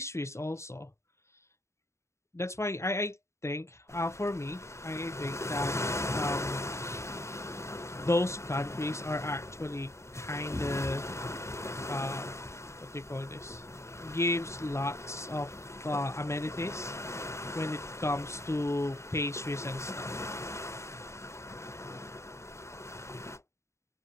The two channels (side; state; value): right; late; 0.14 ms